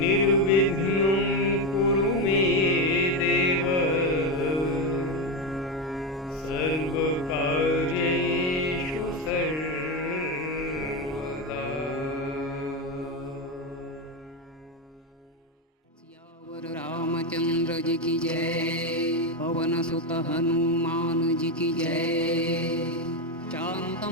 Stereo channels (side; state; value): both; normal; correlation 0.11